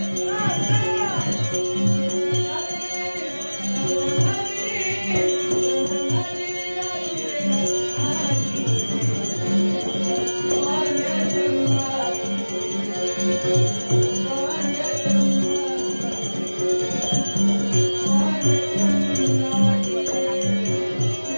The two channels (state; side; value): inverted; both; correlation -1.00